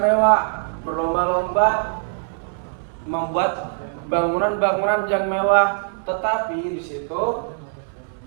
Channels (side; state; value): left; silent; 64 dB below the other